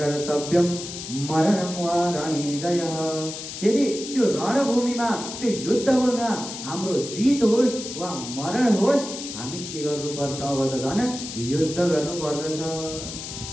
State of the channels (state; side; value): noise; left; hiss, 9 dB below the sound